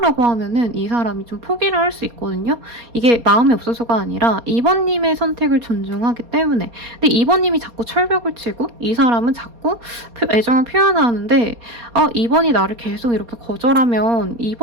하면은 이 사람이 좀 포기를 할 수 있거든요. 이게 마음이 없어서가 아니라 이번님의 선택을 존중하기 때문에. 근데 이번님이 자꾸 철벽을 치고 이 사람은 자꾸 애정을 표현하는데 이번이 나를 계속 이렇게 거절하면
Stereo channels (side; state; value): left; late; 4.2 ms